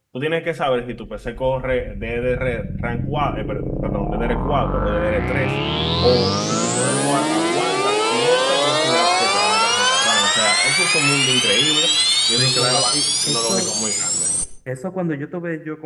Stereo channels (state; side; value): identical; both; correlation 1.00